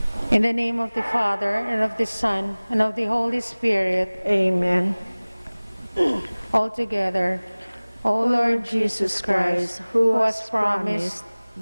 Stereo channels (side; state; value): both; inverted; correlation -1.00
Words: In the name of the Father, and of the Son, and of the Holy Spirit, Amen. all together. O Lord Jesus Christ, who has promised